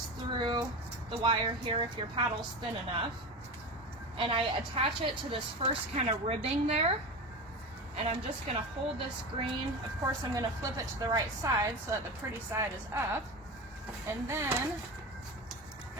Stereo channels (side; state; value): both; normal; correlation 0.25